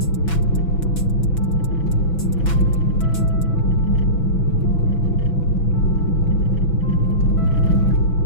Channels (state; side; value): late; right; 6.0 ms